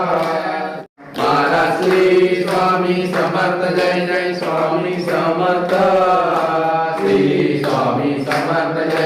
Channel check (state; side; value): identical; both; correlation 1.00